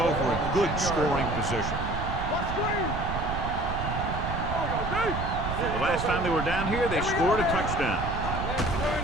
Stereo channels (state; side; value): noise; right; rumble, 4 dB below the sound